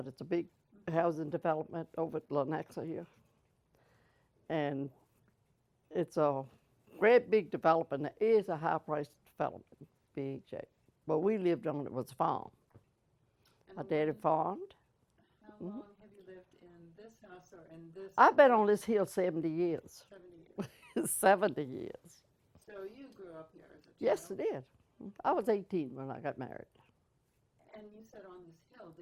It's a big Mm-hmm. housing development over at Lenexa here. And it's a great big development. It is a high priced development, big shape. But we lived on it was a farm. And My daddy farmed. how Hmm. long have you lived in this house or in this I've been on building? this hill 70 years. 70 years. 70 years. So you grew up here as a Yes, I child. did. I was 18 when I got married. And you said on this hill,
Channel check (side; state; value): both; identical; correlation 1.00